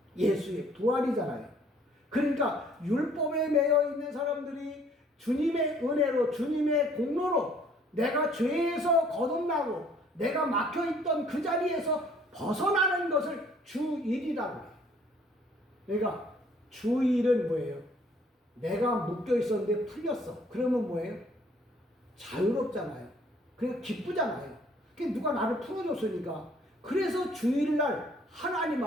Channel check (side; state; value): both; normal; correlation 0.59